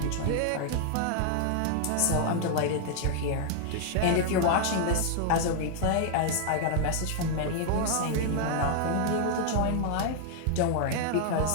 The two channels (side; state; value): both; different; correlation 0.00